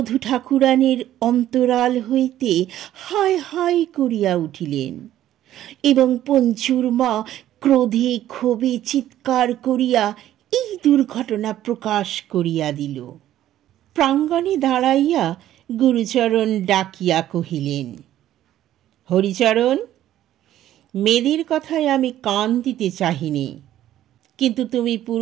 ঠাকুরানীর অন্তরাল হইতে হায় হায় করিয়া উঠিলেন এবং পঞ্চুর মা ক্রোধে ক্ষোভে চিৎকার করিয়া এই দুর্ঘটনা প্রকাশ করিয়া দিল। প্রাঙ্গণে দাঁড়াইয়া গুরুচরণ ডাকিয়া কহিলেন, হরিচরণ, মেয়েদের কথায় আমি কান দিতে চাহিনি, কিন্তু তুমি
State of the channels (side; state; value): left; quieter; 12.7 dB